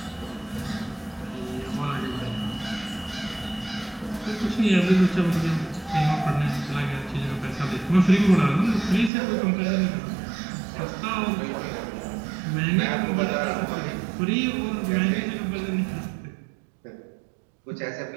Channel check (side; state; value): left; drops out; at 9.1 s